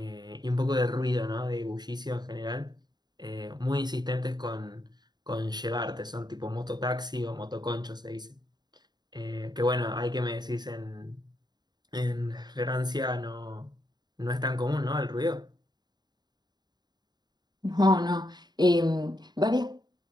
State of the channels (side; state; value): left; late; 0.20 ms